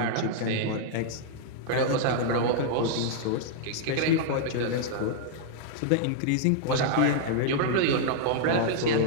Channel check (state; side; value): different; both; correlation -0.01